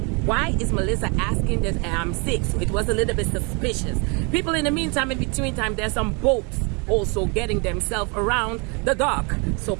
why is Melissa asking that I'm sick? So it was a little bit suspicious. People, in the meantime, in between time, there's some boats also getting themselves around the dock. So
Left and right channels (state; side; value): quieter; left; 32.2 dB